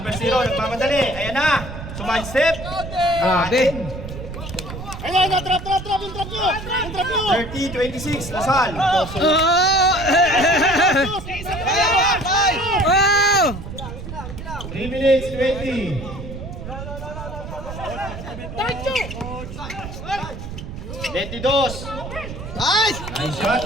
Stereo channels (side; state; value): right; noise; rumble, 10 dB below the sound